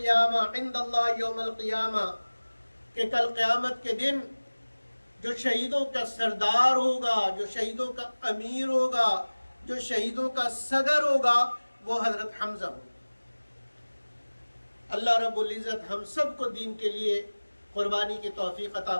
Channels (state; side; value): inverted; both; correlation -1.00